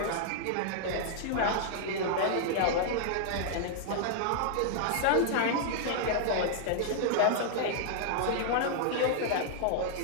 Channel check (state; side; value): different; both; correlation -0.01